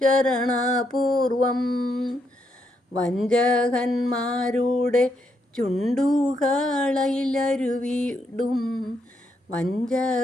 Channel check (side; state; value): both; normal; correlation 0.78